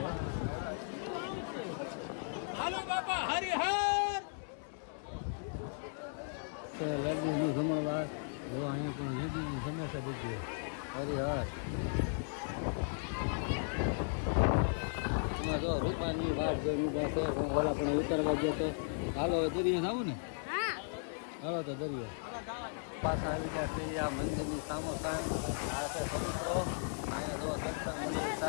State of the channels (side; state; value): right; silent; digital silence